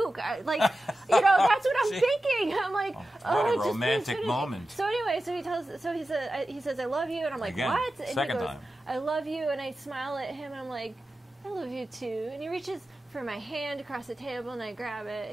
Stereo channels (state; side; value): normal; both; correlation 0.93